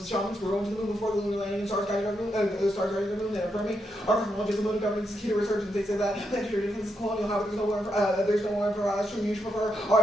The shamans were going to the moon before the lunar landing and stars guiding the moon, and affirming our cosmology as a mode of governance is key to resurgence. They say that planetary defense is colonial. However, there's no more for us. You should prefer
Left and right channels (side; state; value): both; normal; correlation 0.82